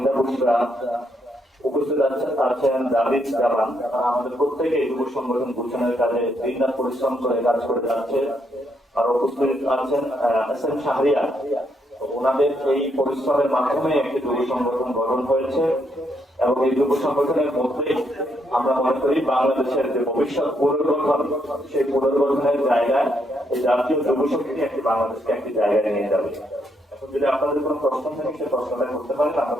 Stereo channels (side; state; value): both; normal; correlation 0.76